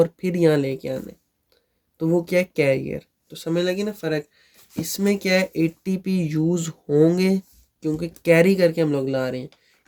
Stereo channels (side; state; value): both; identical; correlation 1.00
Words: फिर यहाँ लेके आना है, तो वो क्या है, कैरियर। तो समझ लगी ना फ़र्क। इसमें क्या है, एटीपी यूज़ होंगे क्योंकि कैरी करके हम लोग ला रहे हैं,